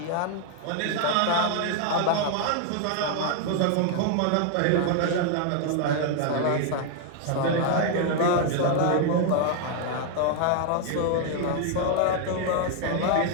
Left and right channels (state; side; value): different; both; correlation 0.00